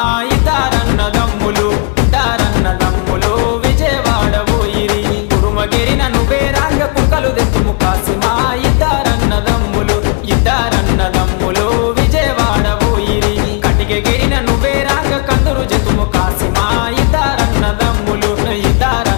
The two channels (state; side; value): quieter; right; 34.6 dB